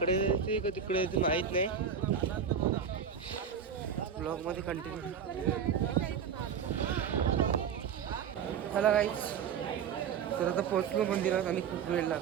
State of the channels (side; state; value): left; quieter; 7.3 dB